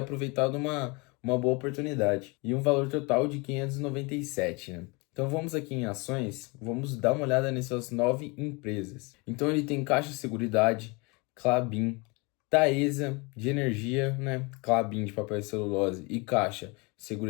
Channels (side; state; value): right; quieter; 28.3 dB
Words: uma boa oportunidade. E um valor total de 597, né? Então vamos aqui em ações, vamos dar uma olhada nessas 9 empresas. Então ele tem Caixa Seguridade, Klabin, Taesa de energia, né? Klabin de papel e celulose e Caixa